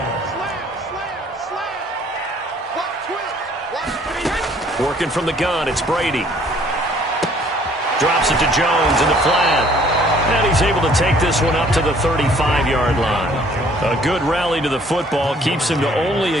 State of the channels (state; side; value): normal; both; correlation 0.59